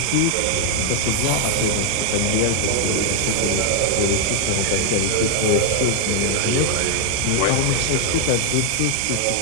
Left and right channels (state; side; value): different; both; correlation 0.00